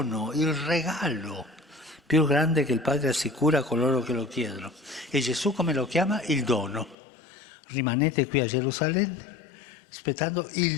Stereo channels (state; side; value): drops out; right; at 7.0 s